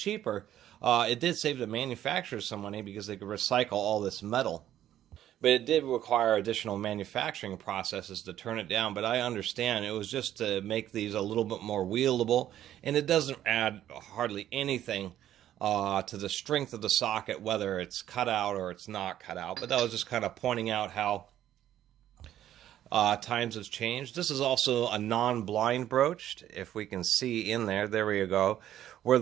It did save the manufacturers some money because they could recycle all this metal. But it did require additional manufacturing processes to turn it down. But I understand it was just to make these a little bit more wieldable, and it doesn't add hardly anything to the strength of the socket, whether it's cut out or it's not cut out. But that was just kind of pointing out how times have changed. This is also a non-blind broached, if we can see in there. There we go. Where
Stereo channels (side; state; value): left; quieter; 11.9 dB